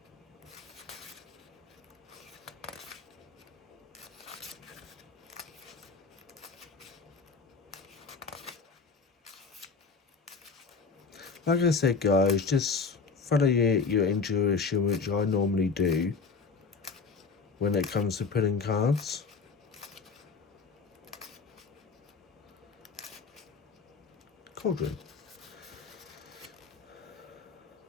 Like I said, guys, just follow your intuition, which I normally do when it comes to pulling cards. cauldron.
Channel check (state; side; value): quieter; right; 4.9 dB